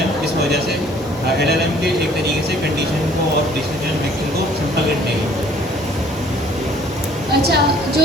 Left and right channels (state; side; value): normal; both; correlation 0.57